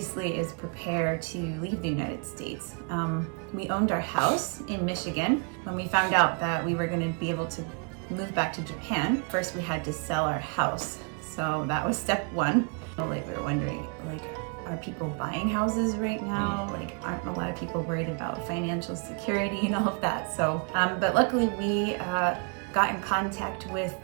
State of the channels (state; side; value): quieter; left; 37.1 dB